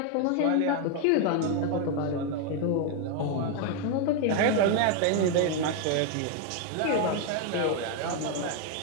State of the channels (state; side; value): different; both; correlation 0.01